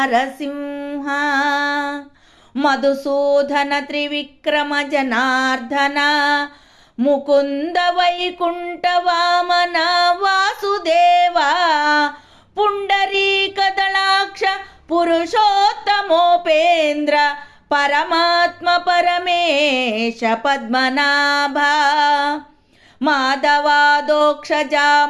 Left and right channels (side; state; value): both; identical; correlation 1.00